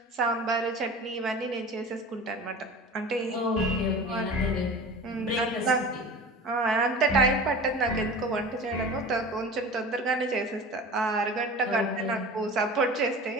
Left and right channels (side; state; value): both; normal; correlation 0.37